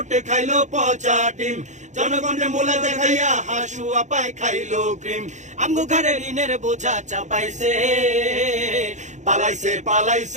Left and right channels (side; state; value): left; late; 0.35 ms